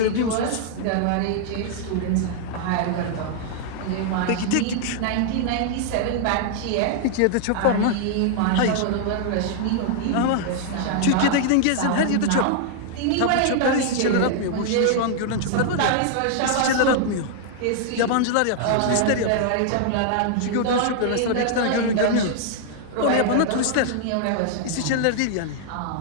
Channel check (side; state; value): both; different; correlation 0.00